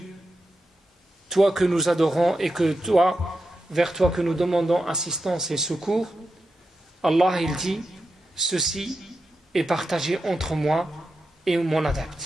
toi que nous adorons et que toi, vers toi que nous demandons assistance et secours, Allah il dit ceci est partagé entre moi et mon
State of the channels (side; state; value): both; normal; correlation 0.89